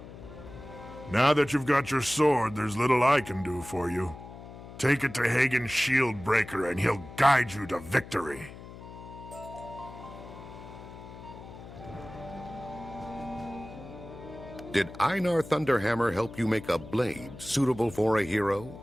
Now that you've got your sword, there's little I can do for you. Take it to Hagen's shield breaker and he'll guide you to victory. Did Einar Thunderhammer help you make a blade suitable for a hero?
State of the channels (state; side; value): noise; left; hum, 15 dB below the sound